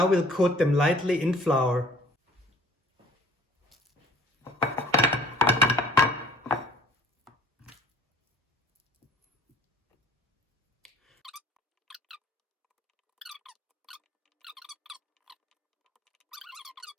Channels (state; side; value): normal; both; correlation 0.53